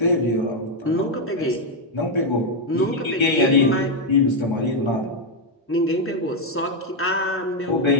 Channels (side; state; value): both; normal; correlation 0.02